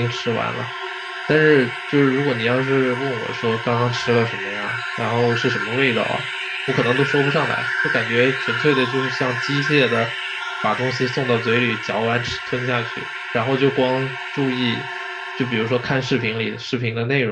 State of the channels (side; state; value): both; identical; correlation 1.00